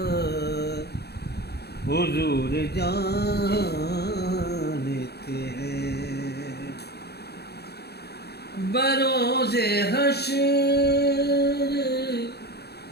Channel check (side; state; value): right; late; 0.47 ms